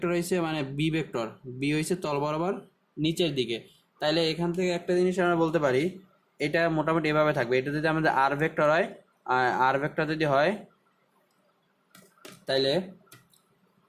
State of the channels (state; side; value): identical; both; correlation 1.00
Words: হয়েছে মানে বি হয়েছে তল বরাবর নিচের দিকে। তাইলে এখান থেকে একটা জিনিস আমরা বলতে পারি, এটা মোটামুটি এভাবে থাকবে। এটা যদি আমাদের আর ভেক্টর হয়, তাইলে